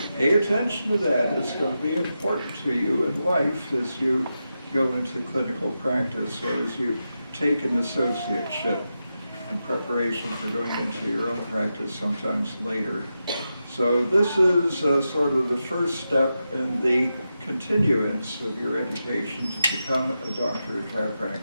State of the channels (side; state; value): both; inverted; correlation -0.89